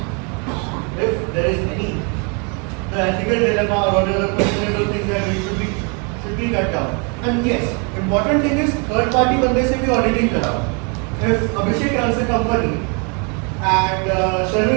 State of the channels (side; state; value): left; quieter; 35.0 dB